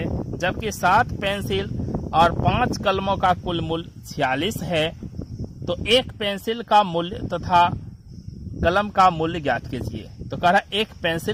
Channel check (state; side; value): identical; both; correlation 1.00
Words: जबकि 7 पेंसिल और 5 कलमों का कुल मूल्य 46 है। तो एक पेंसिल का मूल्य तथा कलम का मूल्य ज्ञात कीजिए। तो कह रहा है एक